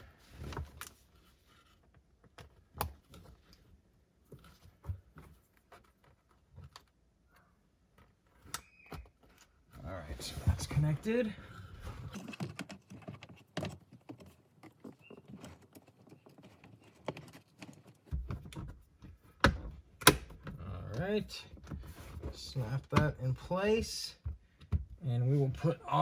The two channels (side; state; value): both; identical; correlation 1.00